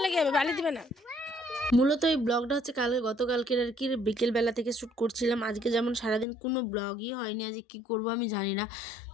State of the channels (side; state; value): right; drops out; at 6.2 s